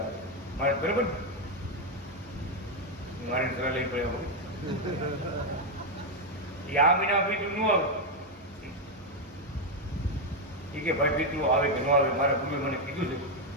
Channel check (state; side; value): normal; both; correlation 0.04